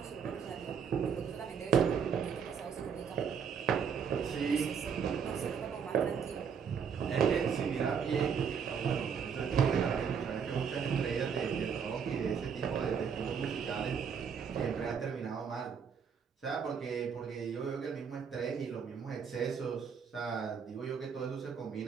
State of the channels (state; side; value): quieter; left; 6.8 dB